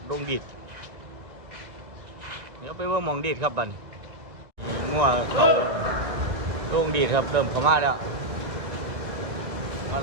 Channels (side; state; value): left; late; 2.3 ms